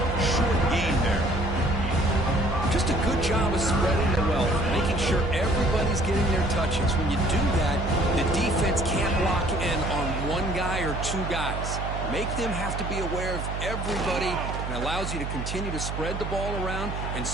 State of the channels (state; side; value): noise; right; hum, 4 dB below the sound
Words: short gain there. Just a good job of spreading the wealth, making sure everybody's getting their touches. When you do that, the defense can't lock in on one guy or 2 guys. Make them have to be aware of everybody, and allows you to continue to spread the ball around and